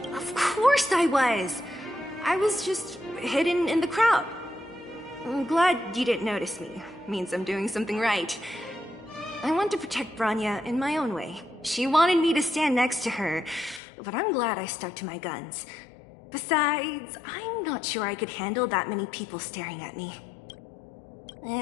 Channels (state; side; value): drops out; right; at 13.8 s